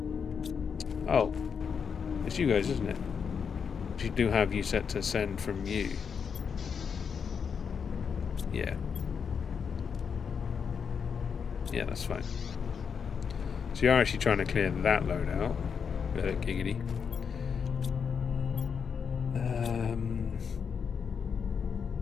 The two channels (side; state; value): right; quieter; 6.5 dB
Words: Oh, it's you guys, isn't it? You do have you set to send from you. Yeah. Yeah, that's fine. So you're actually trying to clear that load out. Giggity.